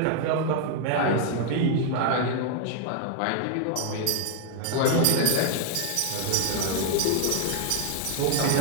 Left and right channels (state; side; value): different; both; correlation 0.00